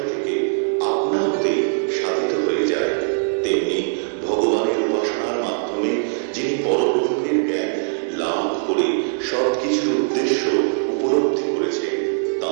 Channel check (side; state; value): left; silent; digital silence